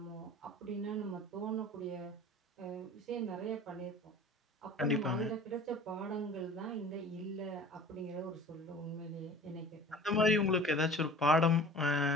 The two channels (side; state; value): both; normal; correlation 0.43